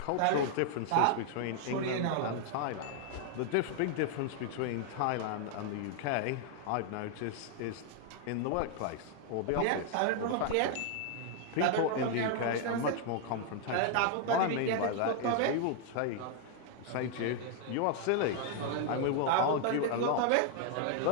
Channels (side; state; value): both; different; correlation 0.00